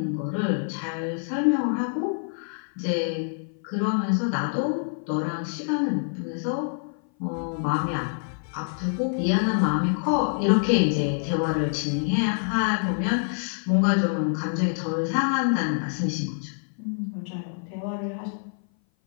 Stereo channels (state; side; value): silent; right; 58 dB below the other